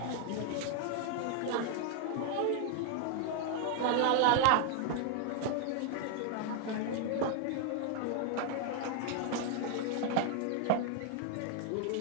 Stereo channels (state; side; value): different; both; correlation 0.00